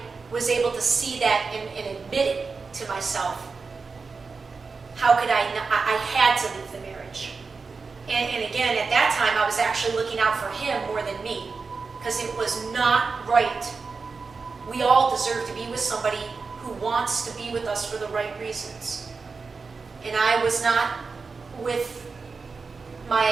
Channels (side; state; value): left; quieter; 4.6 dB